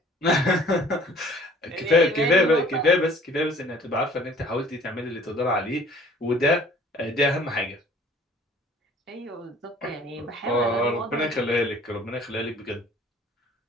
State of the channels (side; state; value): both; normal; correlation 0.53